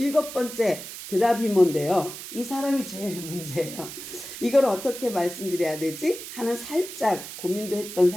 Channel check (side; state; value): right; noise; hiss, 11 dB below the sound